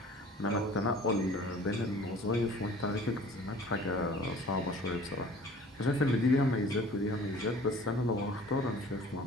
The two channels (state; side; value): normal; both; correlation 0.48